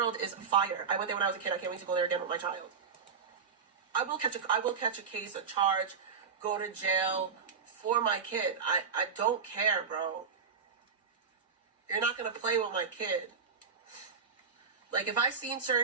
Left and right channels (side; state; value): left; quieter; 5.9 dB